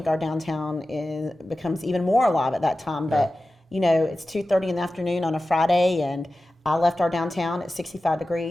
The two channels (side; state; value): both; normal; correlation 0.94